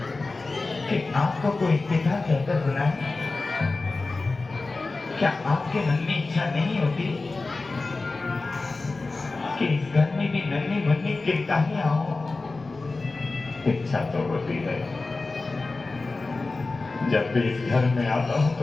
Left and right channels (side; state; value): right; quieter; 3.6 dB